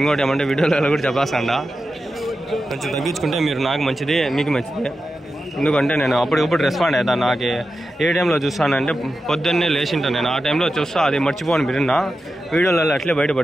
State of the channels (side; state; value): both; normal; correlation 0.91